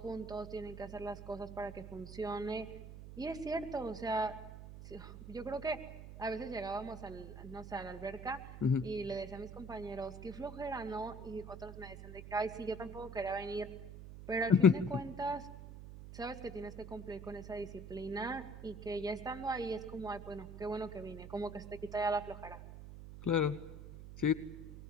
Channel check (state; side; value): noise; right; hum, 11 dB below the sound